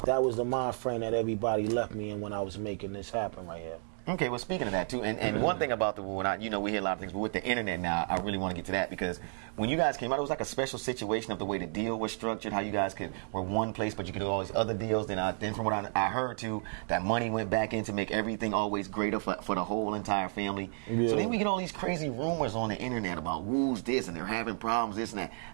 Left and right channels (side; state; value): left; silent; 56 dB below the other